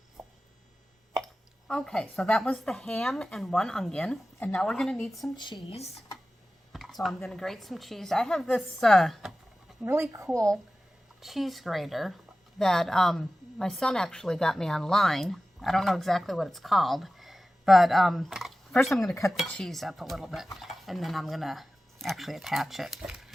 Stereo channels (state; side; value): normal; both; correlation 0.95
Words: Okay, so that was the ham and one onion. And now we're going to need some cheese. So I'm going to grate some cheese. I have this really cool cheese grater that my son actually got me online. I don't know exactly what it's called. But first I'm going to cut the cheese up a little bit. And then I'm going to actually attach it.